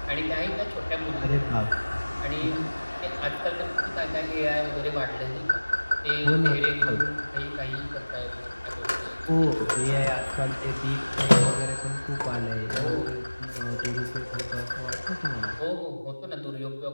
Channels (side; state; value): both; inverted; correlation -1.00